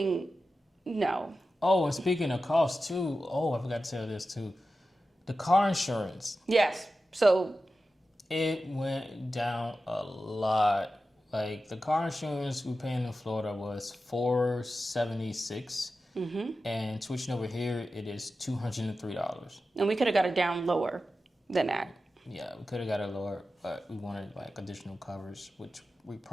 No. Oh, and speaking of cost too. Oh, I forgot to tell this too. The car insurance. Yes. So it went down a lot. Like the car insurance we paying in Florida was $476, and switching over here it is $203. And we could have got it down lower than that. Yeah, we could have got it lower, but we wanted like additional covers, which we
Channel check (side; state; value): both; normal; correlation 0.93